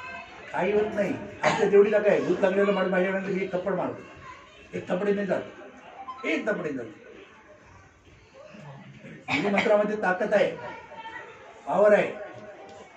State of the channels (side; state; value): both; identical; correlation 1.00